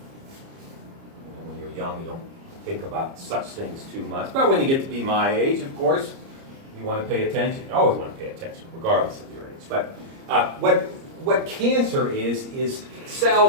When you're young, you don't think about such things too much, but when you get to be my age, of course, you want to pay attention. You always want to pay attention, regardless of your age. But what cancer is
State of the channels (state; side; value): late; left; 30 ms